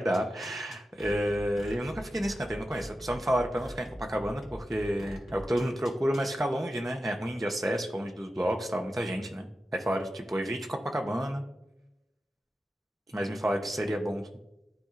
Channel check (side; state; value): both; normal; correlation 0.92